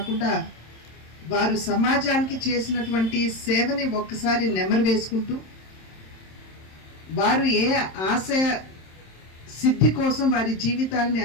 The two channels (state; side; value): late; right; 26 ms